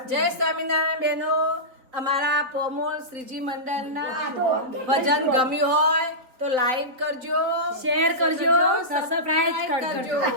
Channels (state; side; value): late; left; 4.1 ms